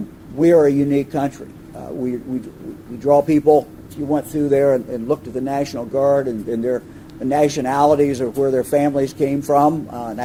We are a unique country. We draw people. If you went through there and looked at the National Guard and the nationalities of where their families came from, and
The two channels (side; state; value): both; identical; correlation 1.00